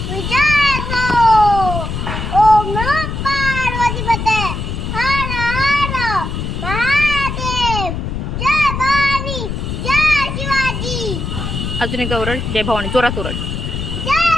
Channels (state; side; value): noise; left; rumble, 4 dB below the sound